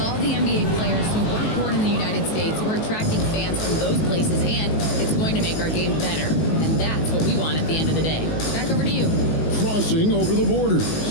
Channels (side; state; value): right; late; 19 ms